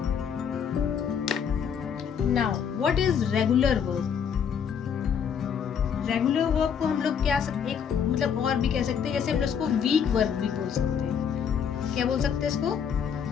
Now what is regular verb? Regular verb को हम लोग क्या एक मतलब और भी कह सकते हैं, जैसे हम लोग इसको वीक वर्ब भी बोल सकते हैं। क्या बोल सकते हैं इसको,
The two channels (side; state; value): right; quieter; 7.5 dB